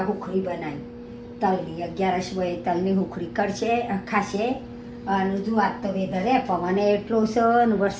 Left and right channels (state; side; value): identical; both; correlation 1.00